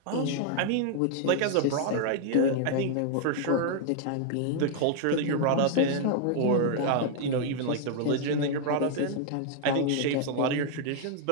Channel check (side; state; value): both; different; correlation 0.00